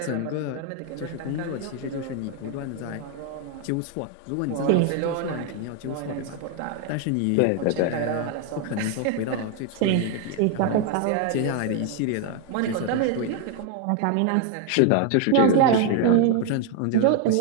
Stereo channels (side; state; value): both; different; correlation 0.01